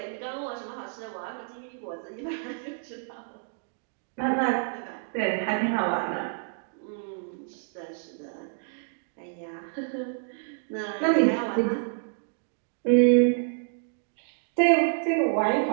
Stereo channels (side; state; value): left; silent; digital silence